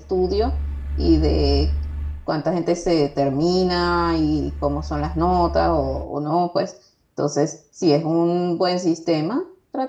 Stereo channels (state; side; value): identical; both; correlation 1.00